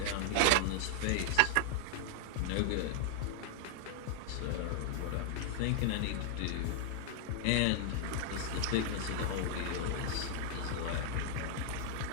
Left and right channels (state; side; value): different; both; correlation -0.01